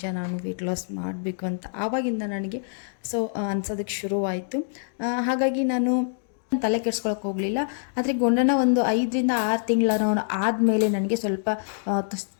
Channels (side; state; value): right; silent; digital silence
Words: ನಾನು ವೆಯ್ಟ್ ಲಾಸ್ ಮಾಡಬೇಕು ಅಂತ ಆವಾಗಿಂದ ನನಗೆ ಅನ್ಸೋದಕ್ಕೆ ಶುರುವಾಯಿತು. ಹಾಗಾಗಿ ನಾನು ತಲೆ ಕೆಡಿಸ್ಕೊಳಕ್ಕೆ ಹೋಗಲಿಲ್ಲ. ಆದರೆ ಗುಂಡನ ಒಂದು 5ರಿಂದ 6 ತಿಂಗಳ ಆದಮೇಲೆ ನನಗೆ ಸ್ವಲ್ಪ